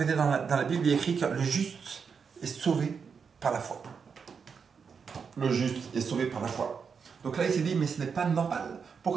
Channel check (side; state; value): left; quieter; 6.0 dB